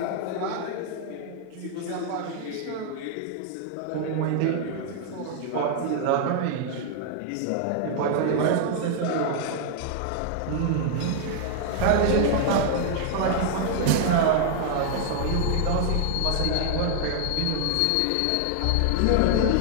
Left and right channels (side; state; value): both; different; correlation 0.00